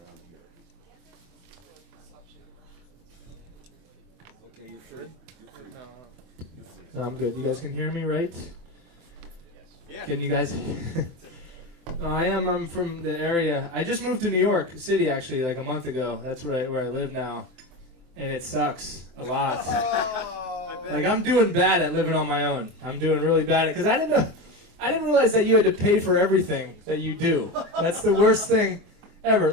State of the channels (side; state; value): left; late; 24 ms